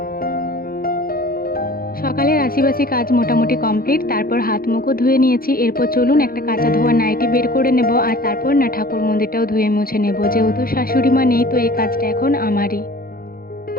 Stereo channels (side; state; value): right; late; 0.43 ms